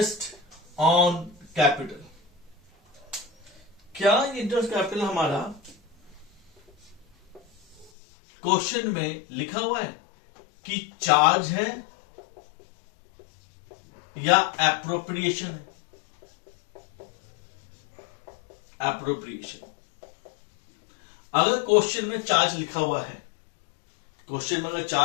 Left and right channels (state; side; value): drops out; right; at 7.9 s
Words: ऑन कैपिटल, क्या इंटरेस्ट कैपिटल हमारा क्वेश्चन में लिखा हुआ है कि चार्ज है या एप्रोप्रिएशन है। एप्रोप्रिएशन, अगर क्वेश्चन में चार्ज लिखा हुआ है, क्वेश्चन में अगर